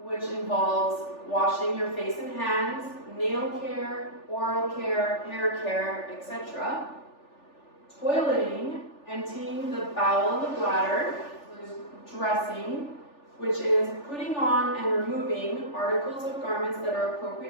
which involves washing your face and hands, nail care, oral care, hair care, etc. Toileting, emptying the bowel and the bladder. There's dressing, which is putting on and removing articles of garments that are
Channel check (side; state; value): right; late; 3.4 ms